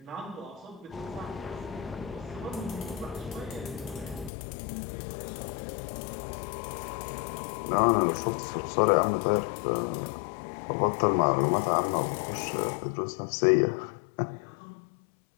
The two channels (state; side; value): drops out; right; at 4.3 s